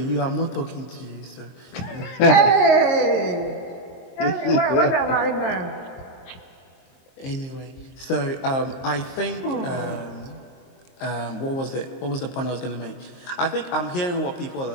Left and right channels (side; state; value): right; late; 23 ms